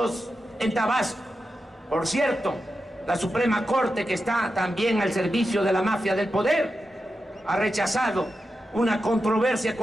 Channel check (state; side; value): normal; both; correlation 0.90